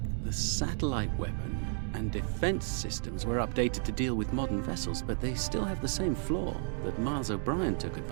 the satellite weapon and defense systems were updated to deal with modern vessels, but they still have the same flaw that Miles O'Brien took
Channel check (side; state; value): left; silent; 56 dB below the other